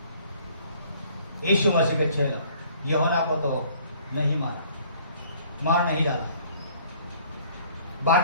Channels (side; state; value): both; inverted; correlation -0.57